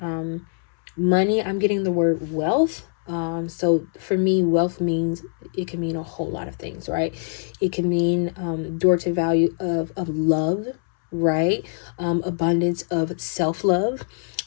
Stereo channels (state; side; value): silent; right; 63 dB below the other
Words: money. I'm getting the word wealth. So for me, wealth means, it can mean a whole lot of things, right? It can mean door to value of love, right? Abundance of self-love,